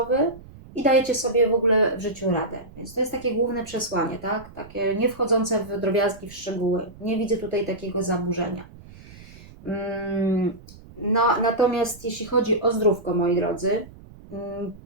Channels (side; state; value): right; noise; rumble, 20 dB below the sound